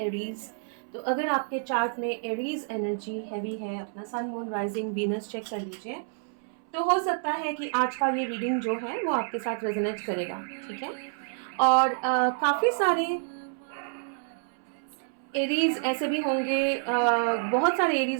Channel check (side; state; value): left; silent; 59 dB below the other